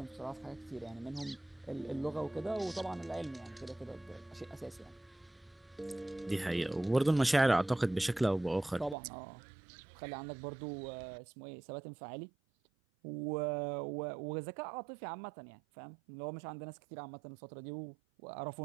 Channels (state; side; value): drops out; left; at 9.0 s